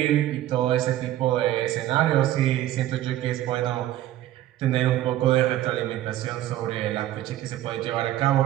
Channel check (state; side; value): quieter; left; 13.7 dB